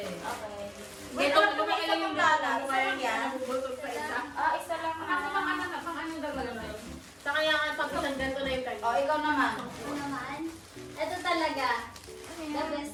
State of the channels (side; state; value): both; identical; correlation 1.00